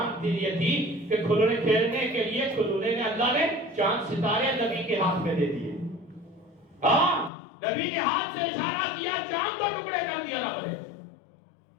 یہ تھی کہ کھلونے کھیلنے کے لیے کھلونے نے اللہ نے چاند ستارے نبی کے ہاتھ میں دے دیے۔ ہاں نبی نے ہاتھ سے اشارہ کیا، چاند کو ٹکڑے کر دیا رب نے۔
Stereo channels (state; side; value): drops out; right; at 7.3 s